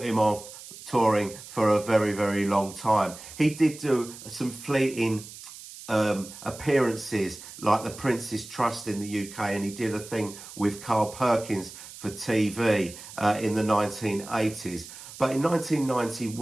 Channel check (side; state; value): right; noise; hiss, 15 dB below the sound